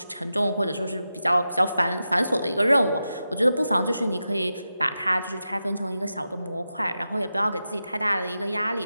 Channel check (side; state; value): both; inverted; correlation -0.90